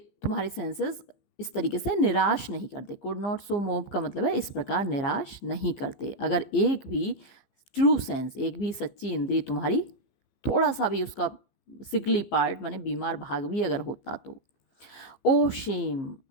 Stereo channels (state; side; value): late; right; 15 ms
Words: तुम्हारे सेंसेस इस तरीके से निराश नहीं करते। कुड नॉट सो मोव का मतलब है इस प्रकार निराश नहीं करते। अगर एक भी ट्रू सेंस, एक भी सच्ची इंद्री तुम्हारी थोड़ा सा भी उसका सिकली पार्ट माने बीमार भाग भी अगर होता तो। ओ शेम,